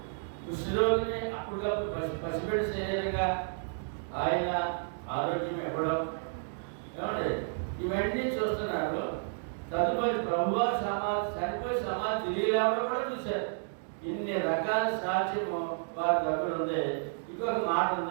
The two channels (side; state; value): left; silent; digital silence